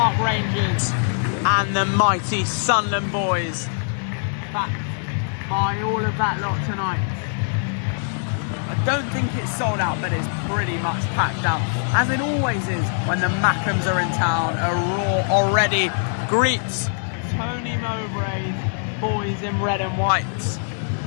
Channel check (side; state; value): right; silent; digital silence